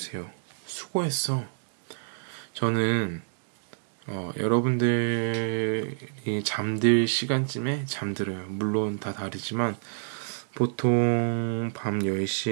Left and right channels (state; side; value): silent; left; digital silence